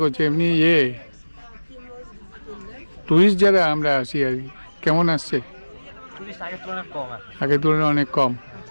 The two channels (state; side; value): inverted; both; correlation -1.00